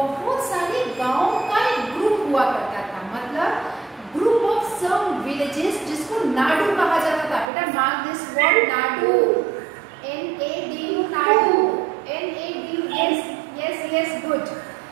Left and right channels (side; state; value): left; drops out; at 7.5 s